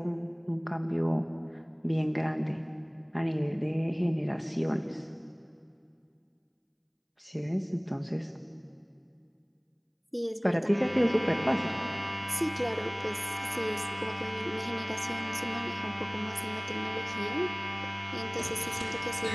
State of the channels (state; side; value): identical; both; correlation 1.00